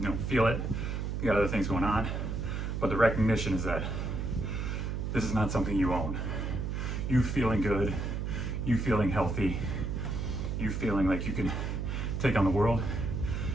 don't feel it. You got other things going on. But the recognition is that this is not something you own. You feeling good, you feeling healthy, you feeling like you can take on the world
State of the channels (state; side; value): noise; right; hum, 2 dB below the sound